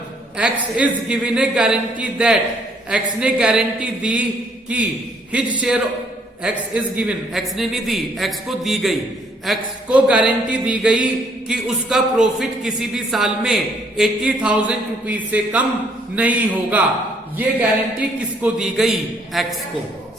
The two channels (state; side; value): normal; both; correlation 0.65